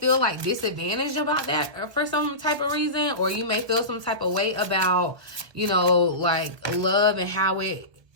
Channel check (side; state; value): left; late; 1.2 ms